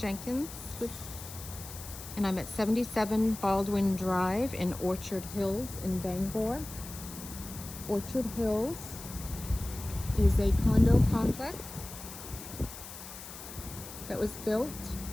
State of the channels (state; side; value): noise; left; hiss, 13 dB below the sound